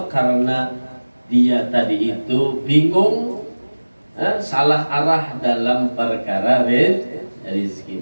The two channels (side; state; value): both; inverted; correlation -1.00